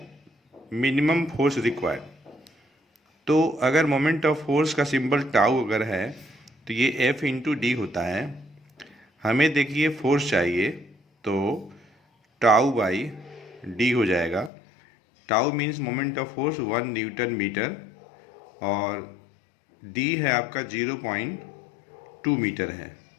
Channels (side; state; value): right; drops out; at 14.5 s